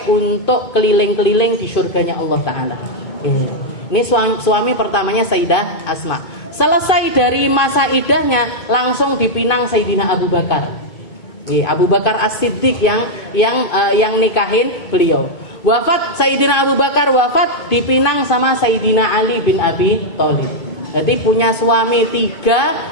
untuk keliling-keliling di surganya Allah Ta'ala. Ini suami pertamanya Sayyidah Asma. Selesai dari masa iddahnya langsung dipinang Sayyidina Abu Bakar. Abu Bakar As-Siddiq yang nikahin beliau. Wafat Sayyidina Abu Bakar dipinang sama Sayyidina Ali bin Abi Thalib. Jadi punya suami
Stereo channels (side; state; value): right; late; 2.5 ms